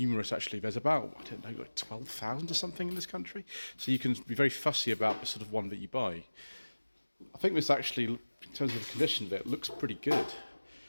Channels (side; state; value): both; inverted; correlation -1.00